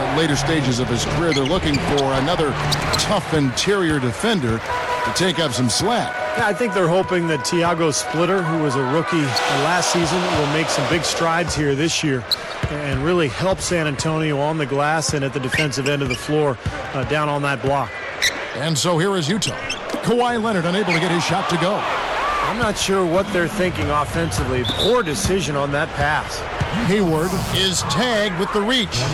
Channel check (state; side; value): identical; both; correlation 1.00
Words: later stages of his career, they're looking for another tough interior defender to take up some slack. Yeah, I think they're hoping that Tiago Splitter, who was a rookie last season, will make some big strides here this year and really help San Antonio on the glass and at the defensive end of the floor down on that block. And so here is Utah. Kawhi Leonard unable to get his shot to go. I'm not sure what they're thinking offensively. Poor decision on that pass. Hayward is tagged with the reach.